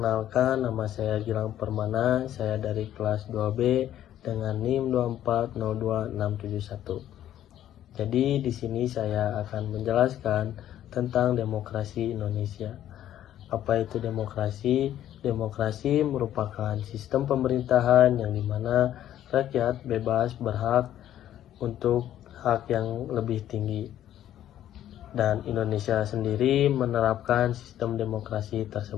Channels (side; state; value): right; quieter; 11.8 dB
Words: nama saya Gilang Permana, saya dari kelas 2B dengan NIM 2402671. Jadi di sini saya akan menjelaskan tentang demokrasi Indonesia. Apa itu demokrasi? Demokrasi merupakan sistem pemerintahan yang dimana rakyat bebas berhak untuk hak yang lebih tinggi. Dan Indonesia sendiri menerapkan sistem demokrasi